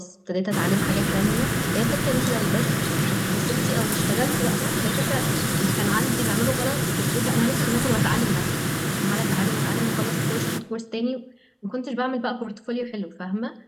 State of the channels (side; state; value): both; identical; correlation 1.00